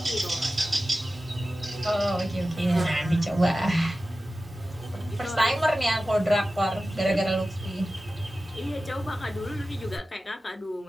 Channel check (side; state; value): both; normal; correlation 0.95